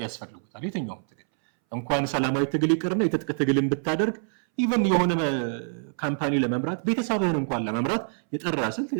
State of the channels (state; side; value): silent; left; 61 dB below the other